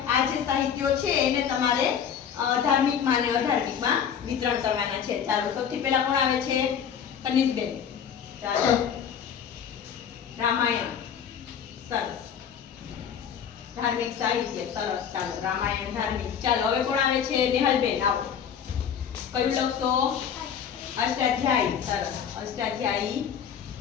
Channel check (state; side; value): quieter; right; 8.0 dB